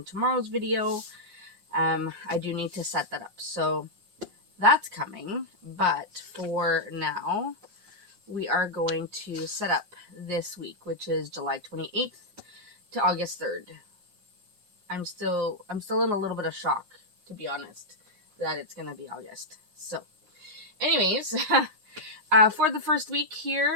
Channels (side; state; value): left; late; 5.6 ms